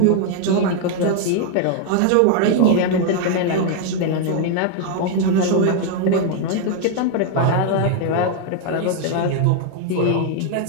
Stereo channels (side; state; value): both; different; correlation 0.00